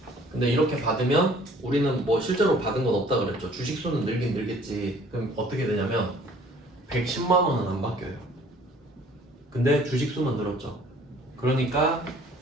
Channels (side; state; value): both; normal; correlation 0.55